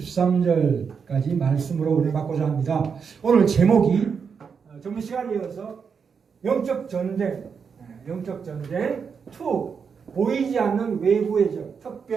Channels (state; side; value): quieter; left; 6.2 dB